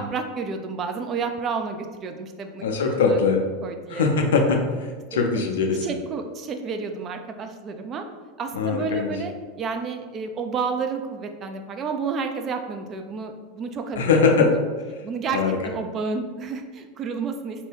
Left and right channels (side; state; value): both; normal; correlation 0.10